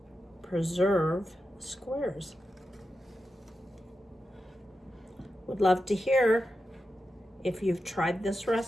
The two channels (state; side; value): normal; both; correlation 0.90